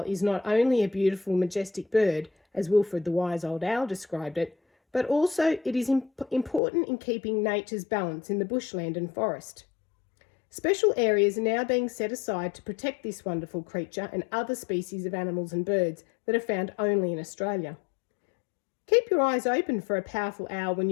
is not only a beautiful, majestic bird, as Wilfred the wise old owl described it, but also it is important in keeping nature's balance in the bushland and forest. Special areas are now being set aside to protect this wonderful creature and other species of animals and birds that are found only in Australia. Keep your eyes open for a powerful owl when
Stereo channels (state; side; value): drops out; right; at 6.6 s